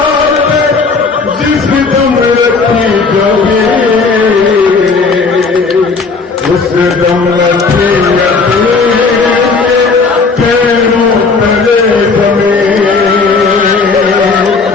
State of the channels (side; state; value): right; quieter; 4.4 dB